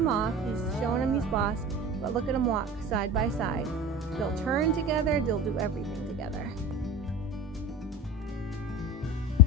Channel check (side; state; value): both; normal; correlation 0.32